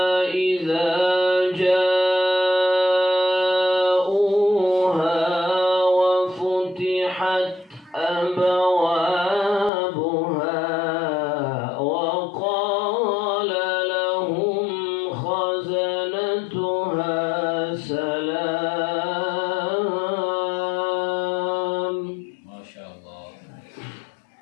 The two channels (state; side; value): drops out; right; at 9.7 s